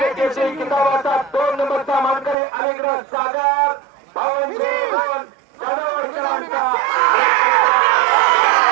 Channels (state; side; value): drops out; left; at 2.4 s